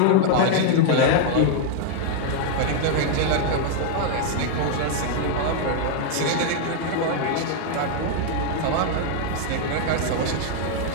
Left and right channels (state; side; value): different; both; correlation 0.00